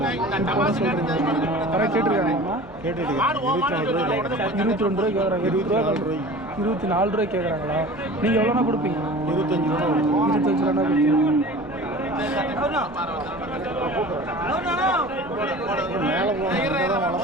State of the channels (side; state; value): both; normal; correlation 0.40